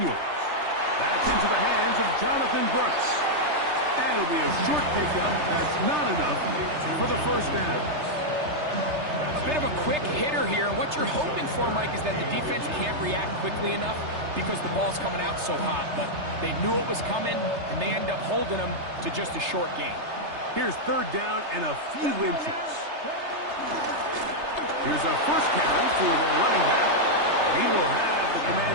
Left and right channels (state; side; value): late; left; 3.3 ms